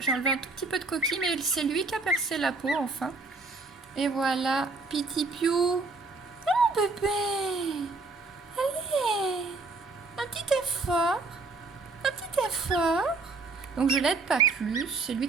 enlevé un tout petit peu de coquille, mais c'est lui qui a percé la peau, enfin. Et voilà, Petit Piou. Oh, bébé. Allez, un petit effort. Un petit effort. Donc, je l'aide pas plus, c'est lui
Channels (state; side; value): quieter; left; 3.7 dB